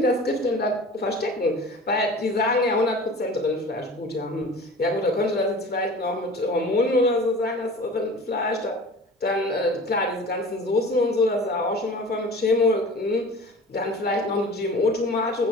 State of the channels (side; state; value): both; normal; correlation 0.40